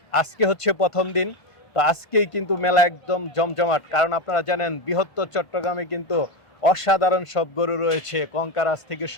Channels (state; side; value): late; right; 1.5 ms